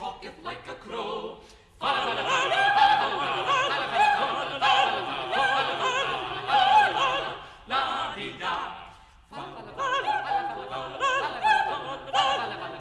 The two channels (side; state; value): both; identical; correlation 1.00